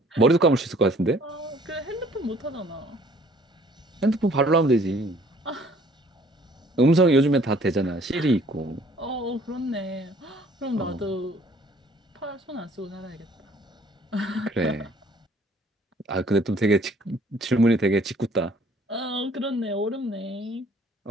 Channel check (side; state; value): both; normal; correlation 0.57